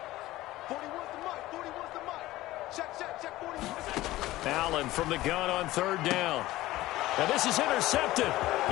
Allen from the gun on 3rd down. Now this is intercepted.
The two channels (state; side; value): quieter; right; 16.9 dB